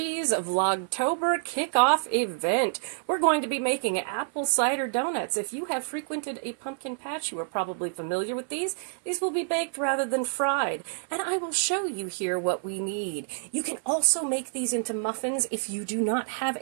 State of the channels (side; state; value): left; silent; 59 dB below the other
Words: Vlogtober kickoff event. We're going to be making apple cider donuts. If you have frequented a pumpkin patch, you are probably familiar with these. These will be baked rather than fried, and I will show you here what we need. You can also make these into muffins if you do not have